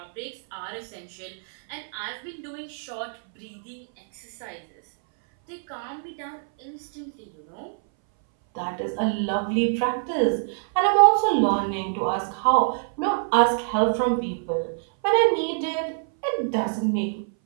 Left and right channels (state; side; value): silent; left; 60 dB below the other